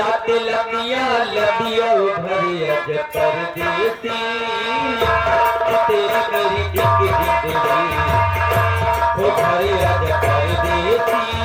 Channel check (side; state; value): both; identical; correlation 1.00